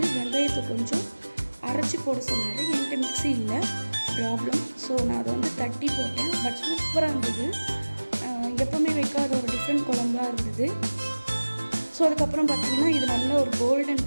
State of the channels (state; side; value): inverted; both; correlation -1.00